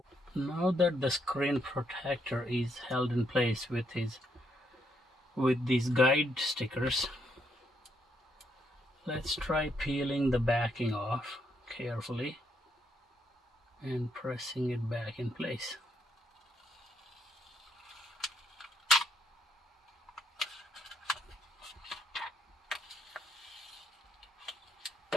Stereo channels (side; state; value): both; normal; correlation 0.75